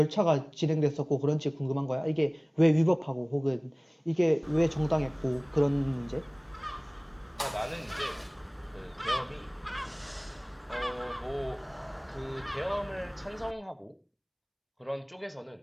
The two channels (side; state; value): both; identical; correlation 1.00